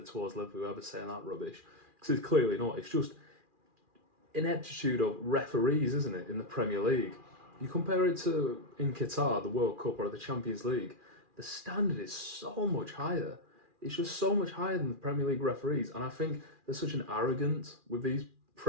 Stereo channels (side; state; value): left; late; 2.4 ms